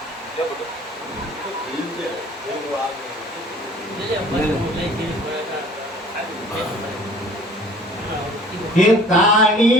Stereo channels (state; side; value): normal; both; correlation 0.51